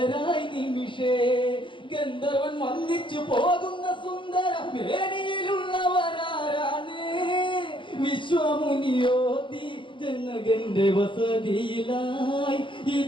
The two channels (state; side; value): late; right; 0.24 ms